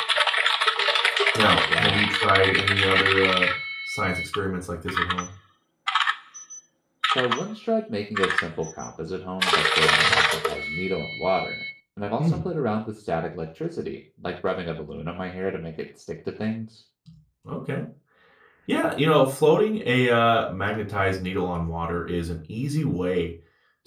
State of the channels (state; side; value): identical; both; correlation 1.00